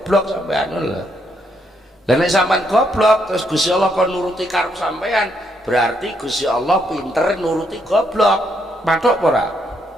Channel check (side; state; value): both; normal; correlation 0.75